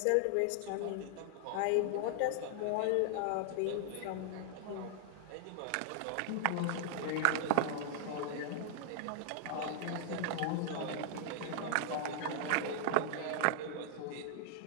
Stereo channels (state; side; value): different; both; correlation 0.00